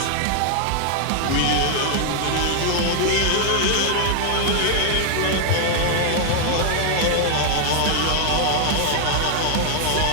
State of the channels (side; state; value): both; different; correlation 0.00